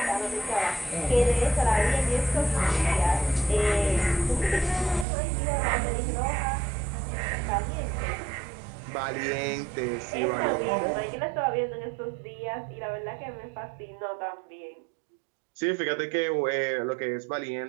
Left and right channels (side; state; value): left; drops out; at 5.1 s